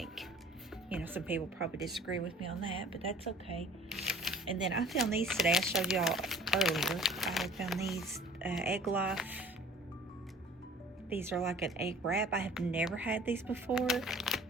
You know, some people probably disagree with me on that, but that's okay. And then I found these today. I showed y'all earlier. I found these Egg Life. These are like an egg wrap. I have never had these before,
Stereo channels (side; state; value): both; normal; correlation 0.47